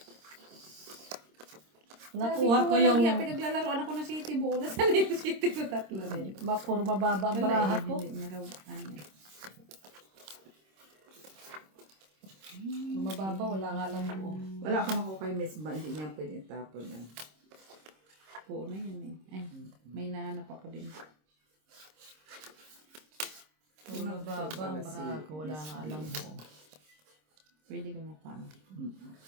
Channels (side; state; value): left; late; 26 ms